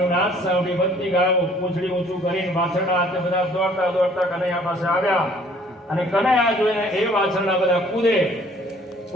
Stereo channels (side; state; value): both; normal; correlation 0.57